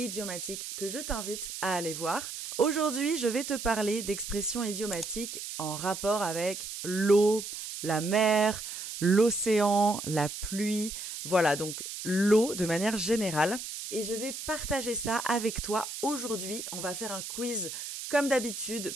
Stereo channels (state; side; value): noise; right; hiss, 8 dB below the sound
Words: que je t'invite à aller voir. Aujourd'hui, je vais te parler d'expressions idiomatiques en rapport avec l'eau, la mer, l'océan, la pluie. Voilà, donc l'eau de manière générale. Et je vais partager ça avec toi aujourd'hui. On va faire un quiz comme d'habitude